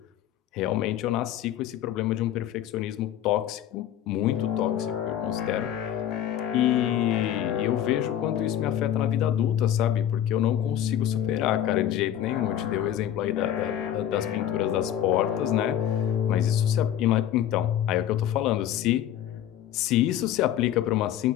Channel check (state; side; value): quieter; right; 11.0 dB